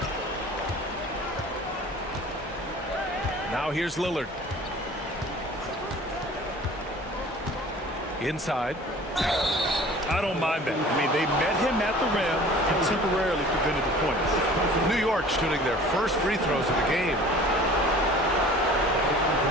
Now here's Lillard. Inside. I don't mind that. I mean, they met him at the rim and temporarily prevented the points. New York shooting their first free throws of the game.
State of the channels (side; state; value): both; normal; correlation 0.46